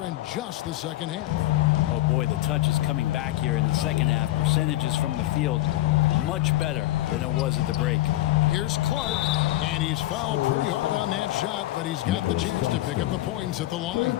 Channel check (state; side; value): quieter; right; 15.9 dB